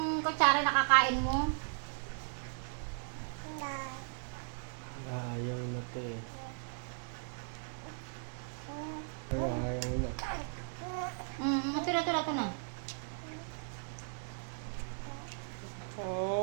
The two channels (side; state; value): left; silent; digital silence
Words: kutsara nakakain mo. Ayaw na te. Ayaw na. Ito na.